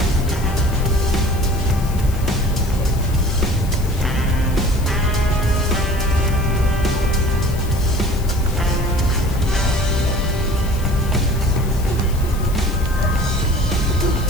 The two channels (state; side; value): noise; left; hiss, 16 dB below the sound